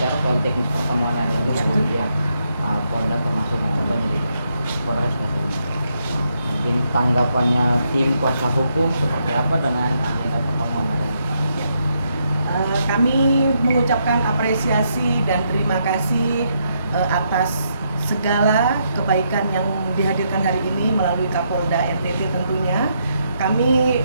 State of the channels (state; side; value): inverted; both; correlation -0.78